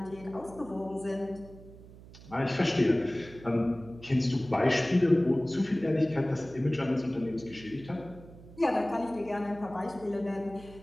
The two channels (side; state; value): right; noise; hum, 19 dB below the sound